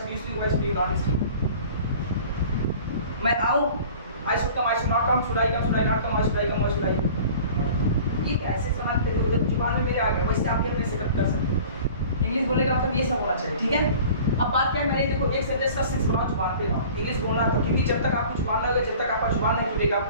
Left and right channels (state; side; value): inverted; both; correlation -0.45